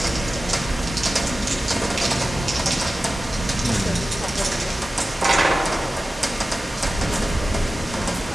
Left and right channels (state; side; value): normal; both; correlation 0.95